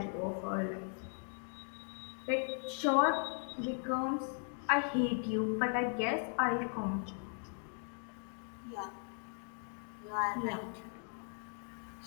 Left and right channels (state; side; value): silent; right; 52 dB below the other